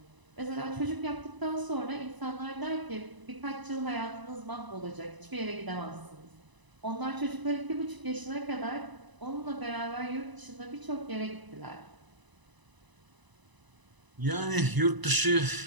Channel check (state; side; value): late; left; 1.0 ms